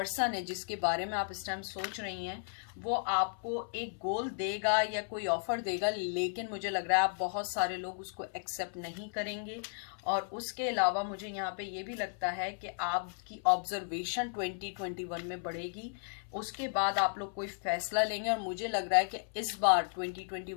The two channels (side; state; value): right; silent; 55 dB below the other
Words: है जिसके बारे में आप इस टाइम सोच रही हैं, वो आपको एक गोल देगा या कोई ऑफर देगा, लेकिन मुझे लग रहा है आप बहुत सारे लोग उसको एक्सेप्ट नहीं करेंगे। और उसके अलावा मुझे यहाँ पे ये भी लगता है कि आपकी ऑब्जर्वेशन 2021 में बढ़ेगी, उसके बाद आप लोग कोई फैसला लेंगे। और मुझे लग रहा है कि इस बार